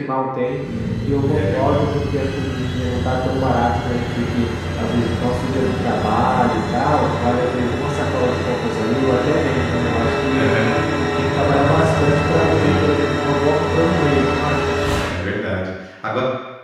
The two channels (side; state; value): both; identical; correlation 1.00